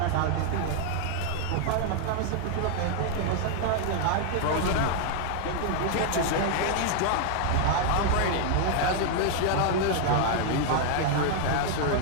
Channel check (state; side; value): different; both; correlation 0.00